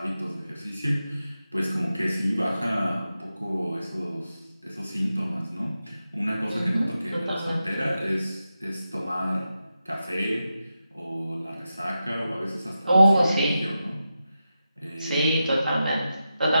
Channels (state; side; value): inverted; both; correlation -0.90